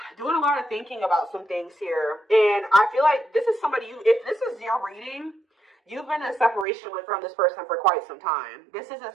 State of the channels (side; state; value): left; drops out; at 6.7 s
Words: doing a lot of thinking about some things here. And I feel like this is somebody, if this is your reading, you've been in separation from this person for quite some time. This isn't